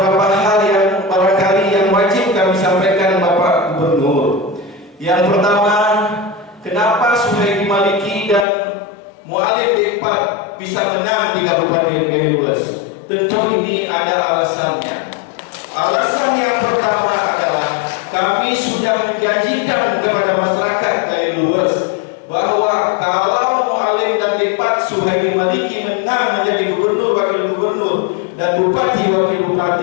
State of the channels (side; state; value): right; drops out; at 8.5 s